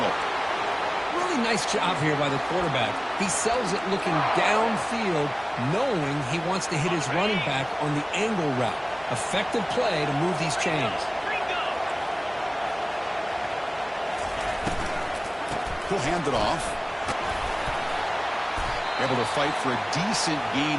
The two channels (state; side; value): identical; both; correlation 1.00